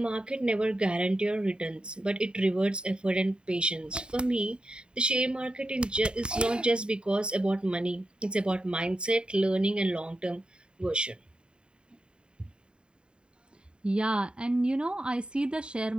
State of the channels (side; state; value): left; late; 0.051 ms